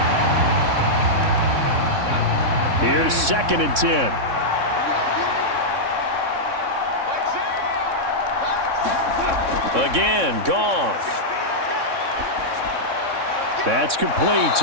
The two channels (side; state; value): left; late; 3.6 ms